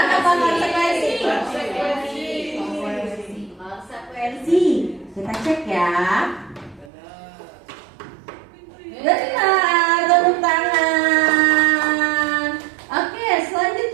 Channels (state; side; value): drops out; left; at 6.9 s